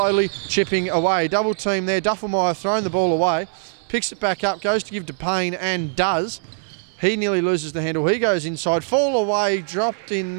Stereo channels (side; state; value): left; silent; digital silence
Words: chipping away. Double team there, Duffenmeyer throwing the ball away, picks it back up, goes to give to Payne, and does. He nearly loses the handle. He goes inside, fall away, dropped in